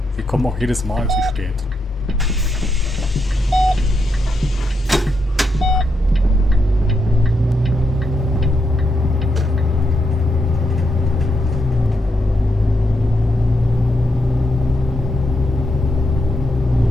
Wir kommen auch jedes Mal zu spät.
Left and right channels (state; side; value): normal; both; correlation 0.81